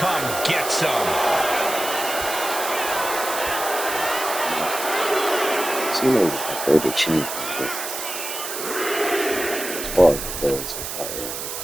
get some. Cena is my favorite champion. As far as it goes,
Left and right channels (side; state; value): right; noise; hiss, 6 dB below the sound